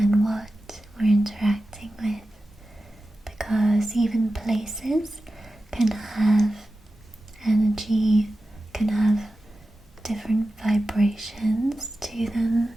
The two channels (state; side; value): normal; both; correlation 0.93